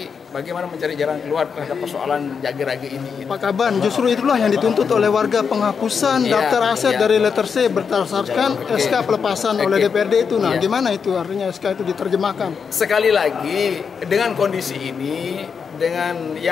Bagaimana mencari jalan keluar terhadap persoalan jagi-ragi ini. Pak Kaban, justru itulah yang dituntut oleh warga, penghapusan daftar aset dari letter C berdasarkan SK pelepasan oleh DPRD itu. Nah, gimana itu artinya SK itu diterjemahkan? Sekali lagi, dengan kondisi ini, dengan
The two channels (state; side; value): quieter; right; 6.2 dB